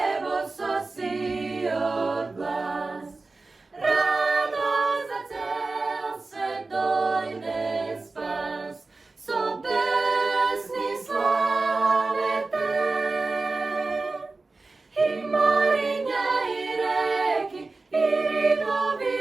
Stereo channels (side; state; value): left; quieter; 3.6 dB